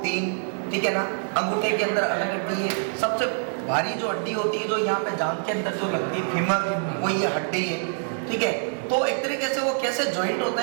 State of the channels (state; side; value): silent; left; 60 dB below the other